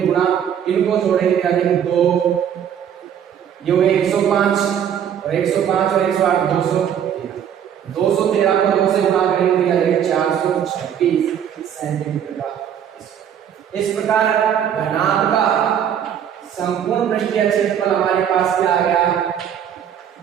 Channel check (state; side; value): quieter; left; 9.0 dB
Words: गुणा, इनको जोड़ेंगे याद है कि 2 ये हुए 105 और 105 और 108 213 को 2 से गुणा करेंगे तो याद 426 सेंटीमीटर का। इस प्रकार घनाभ का संपूर्ण पृष्ठीय क्षेत्रफल हमारे पास क्या आ गया